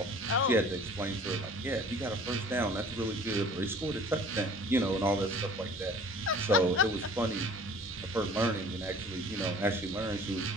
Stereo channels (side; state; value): both; normal; correlation 0.48